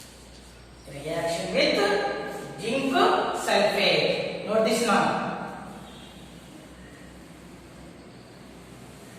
Reaction with zinc sulfate. Note this now.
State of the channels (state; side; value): identical; both; correlation 1.00